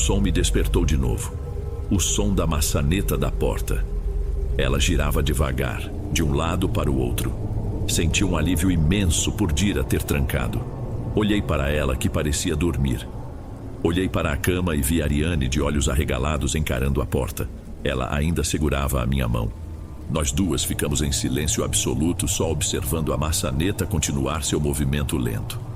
me despertou de novo. O som da maçaneta da porta. Ela girava devagar, de um lado para o outro. Senti um alívio imenso por Dira ter trancado. Olhei para ela, que parecia dormir. Olhei para a cama e vi Ariane de olhos arregalados encarando a porta. Ela ainda segurava a minha mão. Nós duas ficamos em silêncio absoluto, só observando a maçaneta continuar seu movimento lento.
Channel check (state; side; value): identical; both; correlation 1.00